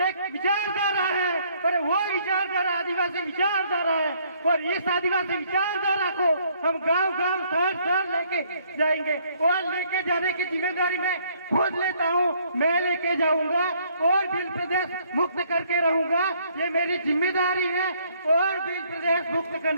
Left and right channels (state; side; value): inverted; both; correlation -0.65